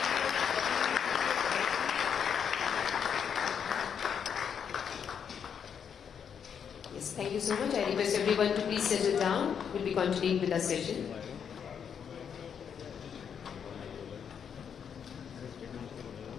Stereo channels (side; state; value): right; quieter; 7.5 dB